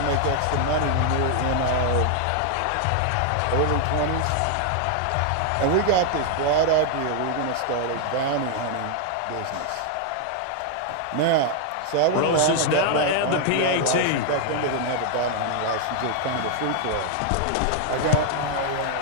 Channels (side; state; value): both; different; correlation 0.00